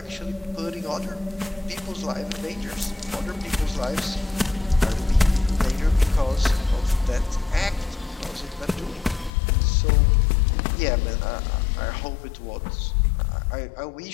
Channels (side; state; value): right; drops out; at 9.3 s